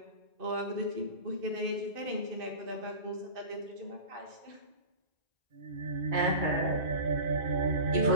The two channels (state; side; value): late; left; 1.9 ms